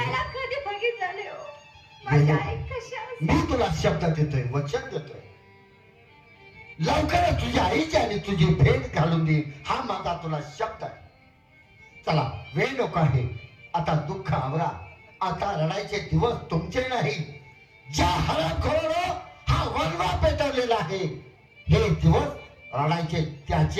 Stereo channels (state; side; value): identical; both; correlation 1.00